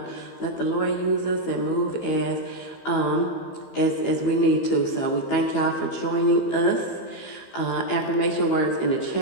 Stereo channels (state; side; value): late; right; 15 ms